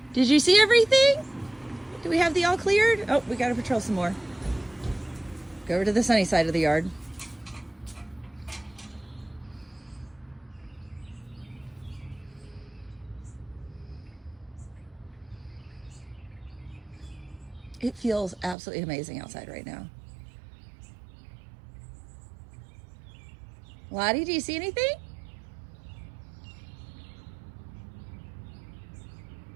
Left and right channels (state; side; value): drops out; left; at 18.6 s